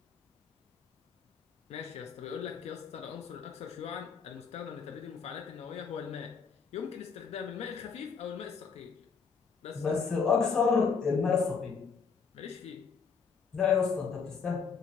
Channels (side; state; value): right; quieter; 5.7 dB